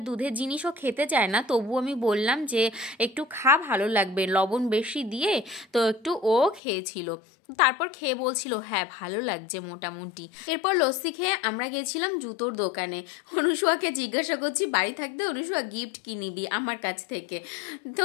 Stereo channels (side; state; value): right; drops out; at 6.6 s